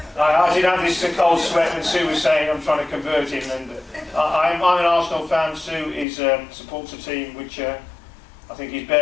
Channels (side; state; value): right; drops out; at 6.1 s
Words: I did have this cold sweat when Sue was saying I'm trying to convert him, and I'm an Arsenal fan. Sue supports a team which I think is